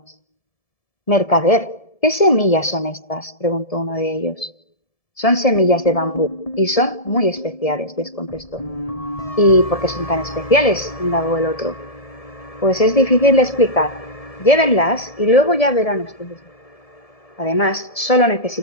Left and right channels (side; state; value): right; late; 1.7 ms